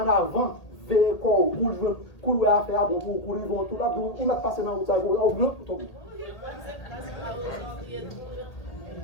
avant, veillez quoi, pour le faire, bon, pour ils vont tout là, pour ils mettent passer dans le temps, au bleu, pour tomber.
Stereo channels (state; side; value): late; right; 1.8 ms